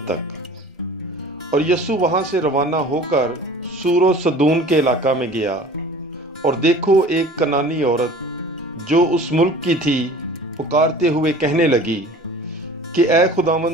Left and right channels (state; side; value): normal; both; correlation 0.44